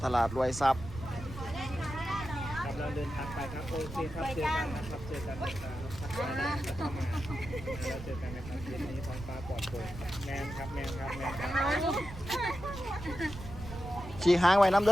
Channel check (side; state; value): right; noise; rumble, 11 dB below the sound